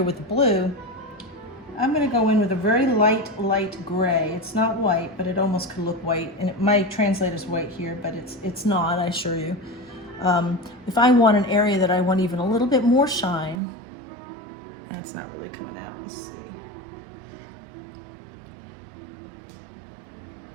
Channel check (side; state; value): left; drops out; at 13.6 s